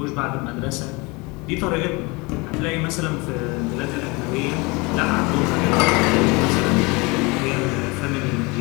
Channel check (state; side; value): quieter; right; 26.3 dB